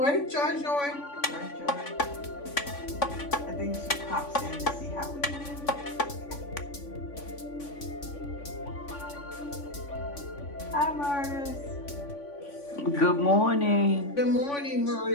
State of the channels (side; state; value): right; late; 3.5 ms